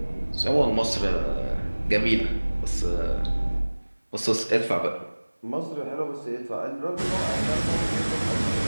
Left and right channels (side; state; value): both; inverted; correlation -1.00